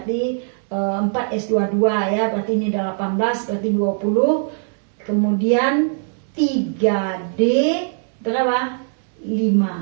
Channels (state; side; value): silent; left; 65 dB below the other